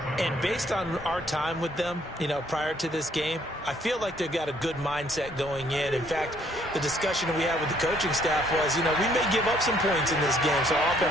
And based on our time with them, prior to this game, I feel like they've got a good mindset going in. In fact, the discussion we had with the coaching staff was, we may give up some points in this game, so our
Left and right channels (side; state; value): both; normal; correlation 0.65